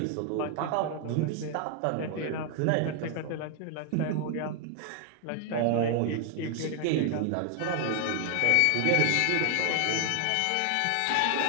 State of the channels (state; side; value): different; both; correlation 0.00